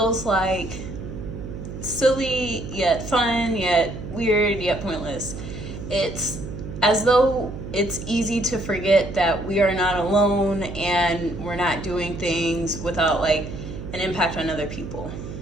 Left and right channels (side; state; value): right; noise; hum, 9 dB below the sound